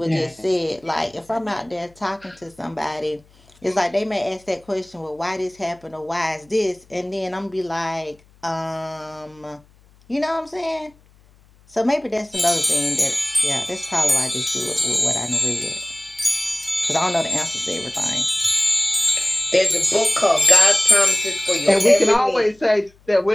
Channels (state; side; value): noise; left; hum, 30 dB below the sound